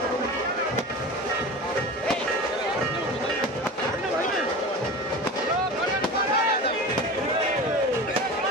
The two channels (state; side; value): normal; both; correlation 0.32